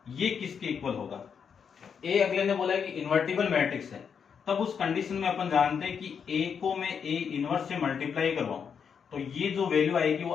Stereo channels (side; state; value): right; quieter; 6.9 dB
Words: ये किसके इक्वल होगा। ए अगले ने बोला है कि इन्वर्टिबल मैट्रिक्स है, तब उस कंडीशन में अपन जानते हैं कि ए को मैं ए इनवर्स से मल्टीप्लाई करवाऊं तो ये जो वैल्यू आएगी